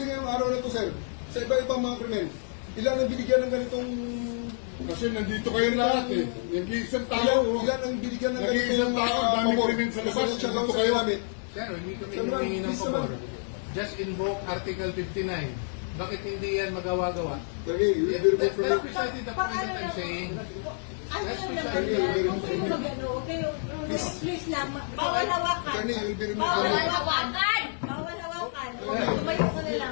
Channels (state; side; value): silent; right; 59 dB below the other